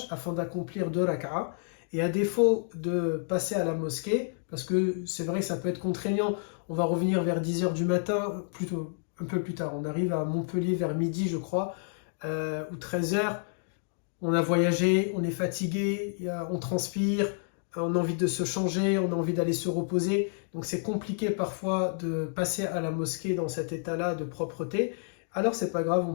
afin d'accomplir 2 rak'a. Et à défaut de passer à la mosquée, parce que c'est vrai que ça peut être contraignant, on va revenir vers 10h du matin, plutôt un peu plus tard. On arrive à Montpellier vers midi, je crois, ou 13h. On a voyagé, on est fatigué, on transpire, on a envie de se changer, on a envie d'aller se reposer. Donc c'est compliqué parfois de passer à la mosquée dans cet état-là de propreté. Alors c'est pas grave, on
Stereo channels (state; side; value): silent; right; digital silence